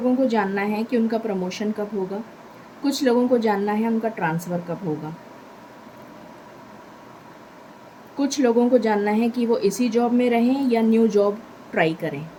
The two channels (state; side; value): identical; both; correlation 1.00